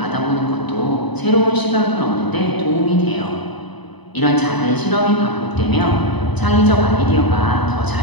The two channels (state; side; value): late; right; 0.99 ms